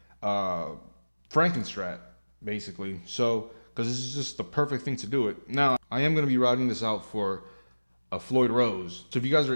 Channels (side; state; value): both; inverted; correlation -1.00